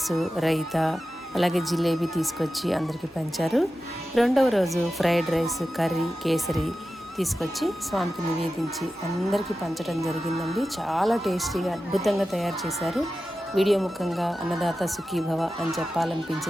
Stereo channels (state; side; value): normal; both; correlation 0.93